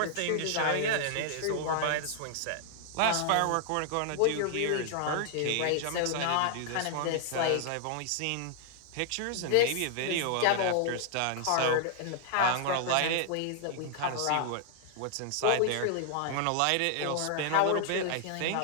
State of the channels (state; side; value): different; both; correlation 0.00